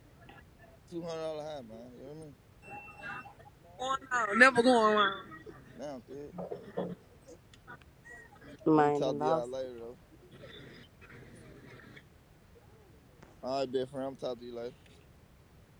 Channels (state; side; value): identical; both; correlation 1.00